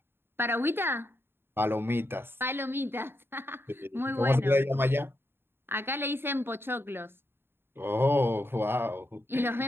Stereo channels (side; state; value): left; late; 0.11 ms